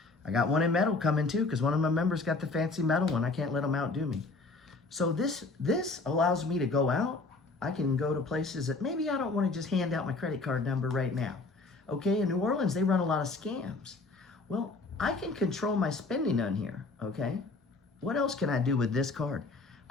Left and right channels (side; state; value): right; quieter; 3.6 dB